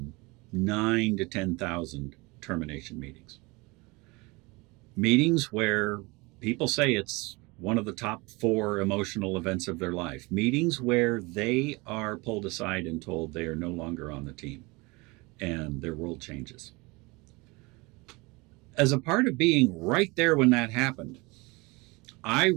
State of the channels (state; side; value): quieter; left; 25.2 dB